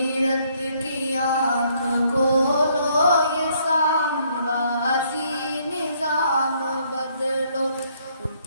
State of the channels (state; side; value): inverted; both; correlation -0.68